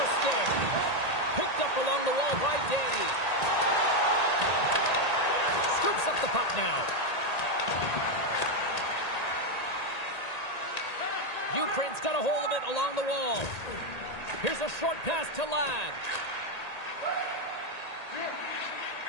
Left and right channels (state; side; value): late; right; 1.8 ms